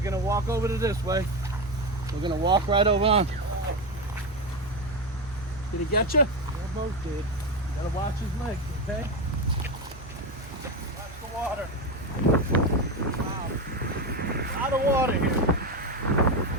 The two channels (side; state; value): right; noise; hum, 18 dB below the sound